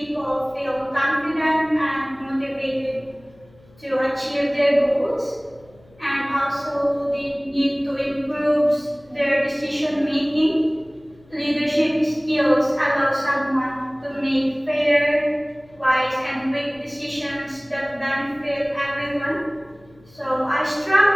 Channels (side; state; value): left; noise; hum, 28 dB below the sound